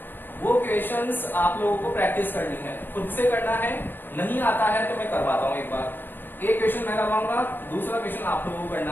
वो क्वेश्चंस आप लोगों को प्रैक्टिस करनी है, खुद से करना है, नहीं आता है तो मैं करवाता हूं एक बार। एक क्वेश्चन मैं करवाऊंगा, दूसरा क्वेश्चन आप लोगों को करना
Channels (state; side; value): late; right; 0.094 ms